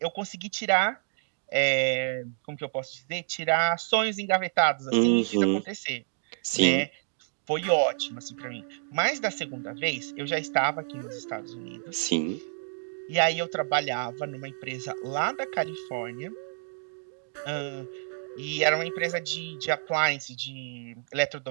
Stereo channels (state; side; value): silent; left; digital silence